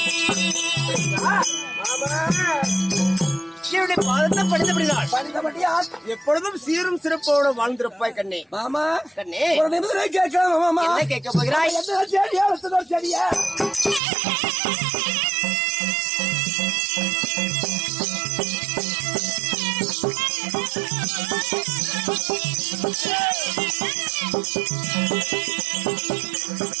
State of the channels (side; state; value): left; drops out; at 14.0 s